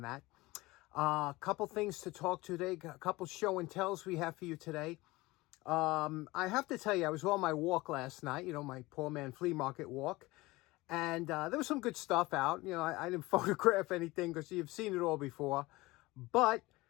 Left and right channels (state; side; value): quieter; right; 20.7 dB